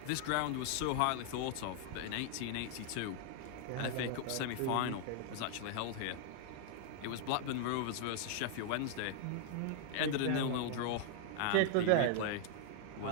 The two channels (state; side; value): different; both; correlation 0.00